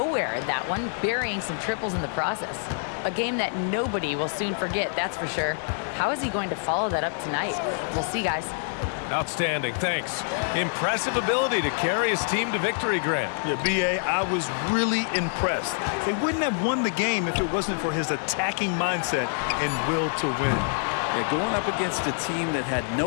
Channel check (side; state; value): right; silent; 61 dB below the other